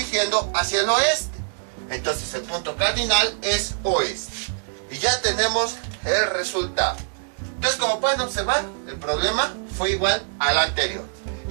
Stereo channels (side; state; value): left; silent; digital silence